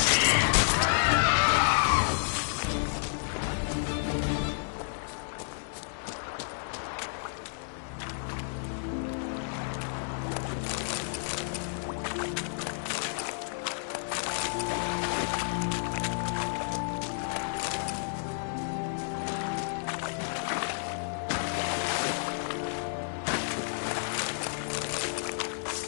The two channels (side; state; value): right; silent; digital silence